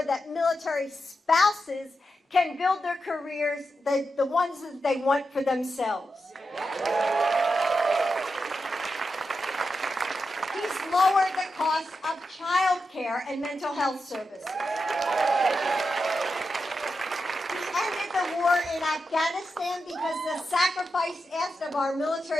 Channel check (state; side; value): normal; both; correlation 0.88